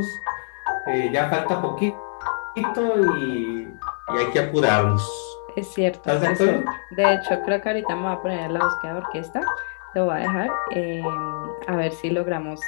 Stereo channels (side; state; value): right; silent; digital silence